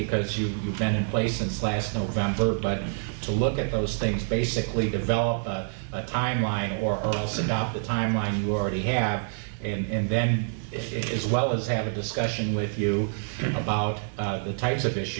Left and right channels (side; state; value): left; silent; digital silence